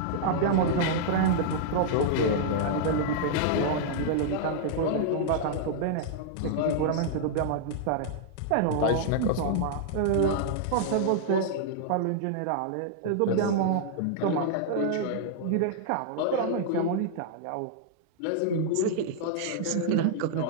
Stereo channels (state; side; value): different; both; correlation -0.01